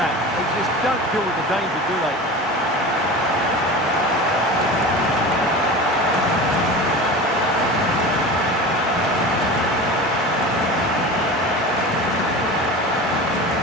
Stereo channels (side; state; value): both; normal; correlation 0.32